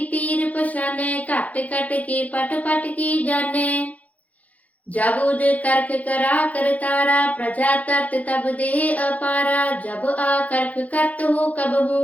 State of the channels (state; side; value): late; right; 0.073 ms